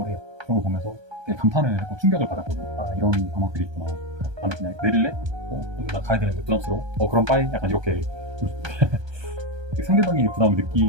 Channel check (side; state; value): left; late; 1.3 ms